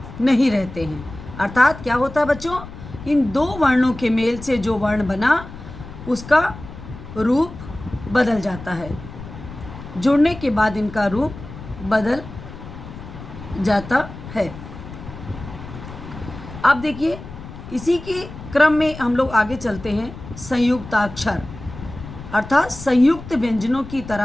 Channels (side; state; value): left; noise; rumble, 13 dB below the sound